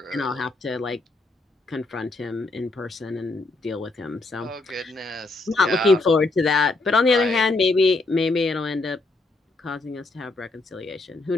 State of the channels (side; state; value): right; quieter; 3.1 dB